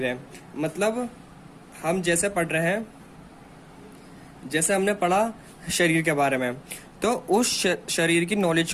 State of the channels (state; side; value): identical; both; correlation 1.00